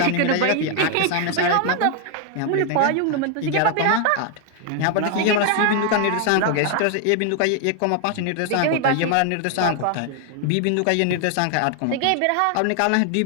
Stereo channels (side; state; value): both; different; correlation 0.00